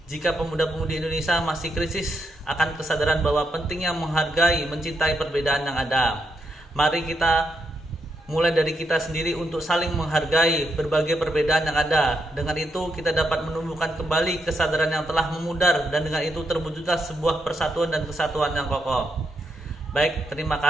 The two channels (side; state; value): both; normal; correlation 0.81